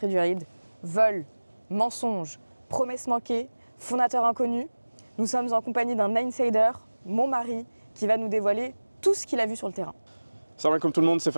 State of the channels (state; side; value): inverted; both; correlation -1.00